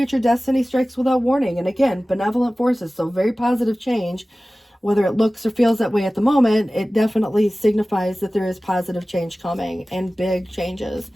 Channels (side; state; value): both; normal; correlation 0.97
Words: destiny strikes without warning. And again, benevolent forces, so very positive change. Whether it looks or feels that way at the moment, it definitely signifies that there is positive change coming, and big changes,